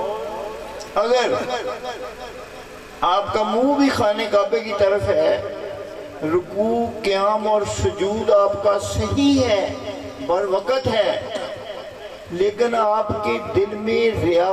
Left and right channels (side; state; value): both; identical; correlation 1.00